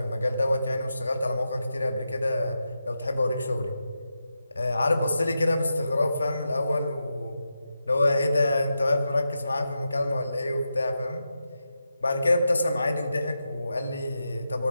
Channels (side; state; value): both; inverted; correlation -0.88